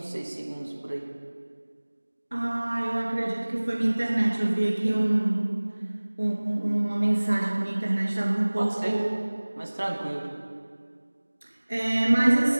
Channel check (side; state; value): both; inverted; correlation -1.00